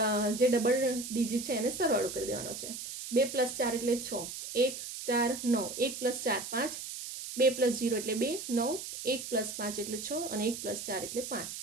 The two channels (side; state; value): right; noise; hiss, 8 dB below the sound